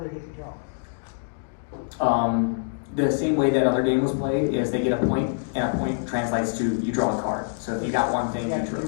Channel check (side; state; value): right; silent; digital silence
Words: they get to draw? The same way that other game was played is they get a point, and a point translates to you draw a card. So if you got one thing, you